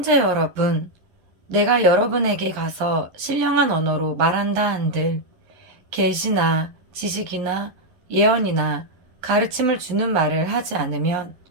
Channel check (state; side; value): late; left; 11 ms